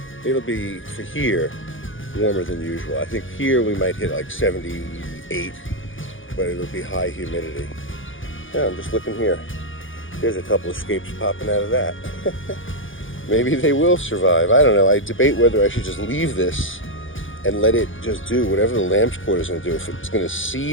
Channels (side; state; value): right; late; 0.57 ms